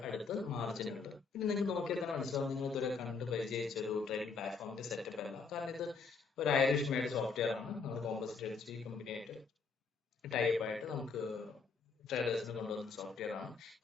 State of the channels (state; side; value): quieter; right; 4.9 dB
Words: അടുത്ത് മാർജിൻ ഉണ്ട്. പിന്നെ നിങ്ങൾക്ക് നോക്കിയാൽ മനസ്സിലാവും, നിങ്ങൾ ഇതുവരെ കണ്ട് പരിചയിച്ച ഒരു ട്രേഡിംഗ് പ്ലാറ്റ്ഫോമിന്റെ സെറ്റപ്പ് അല്ല. കാരണം ഇത് ഒരു ഐറിഷ് മെയ്ഡ് സോഫ്റ്റ്വെയർ ആണ്. നമ്മൾ കോമ്പോസിറ്റ് എഡ്ജ് കമ്പനിയായിട്ട് ടൈപ്പായിട്ട് നമുക്ക് ട്രേഡേഴ്സിന് കൊണ്ടുവന്ന സോഫ്റ്റ്വെയർ ആണ്.